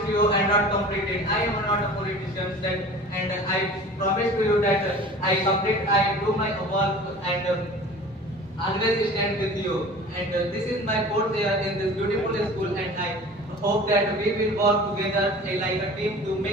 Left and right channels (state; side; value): normal; both; correlation 0.41